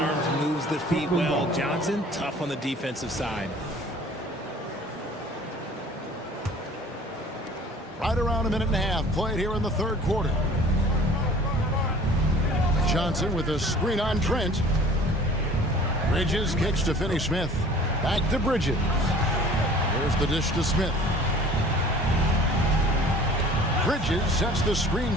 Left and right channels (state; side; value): normal; both; correlation 0.48